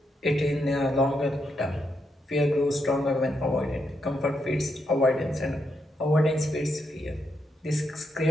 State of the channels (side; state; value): both; normal; correlation 0.81